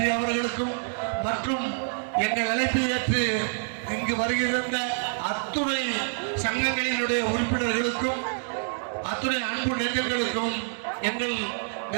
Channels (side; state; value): left; silent; digital silence